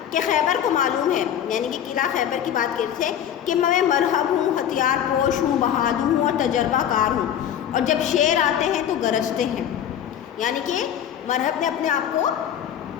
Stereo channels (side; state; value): right; quieter; 9.9 dB